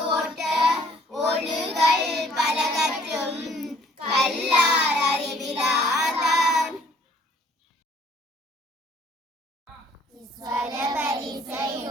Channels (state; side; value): normal; both; correlation 0.58